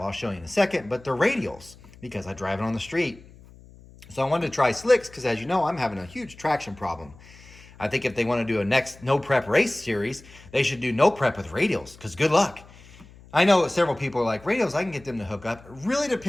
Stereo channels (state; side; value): noise; left; hum, 22 dB below the sound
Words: I'll show you in a second, but they're radials, because I drive it on the street. So I wanted to try slicks, because as you know, I'm having a huge traction problem. I think if they want to do a next no prep race series, they should do no prep with radials, because good luck. I know several people are like, radials, I can get them to hook up. It really